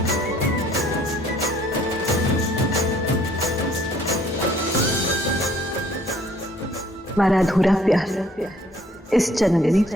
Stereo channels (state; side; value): normal; both; correlation 0.60